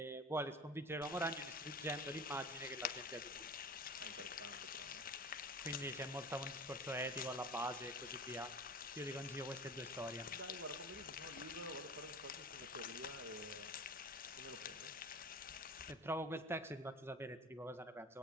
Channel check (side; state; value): both; normal; correlation 0.37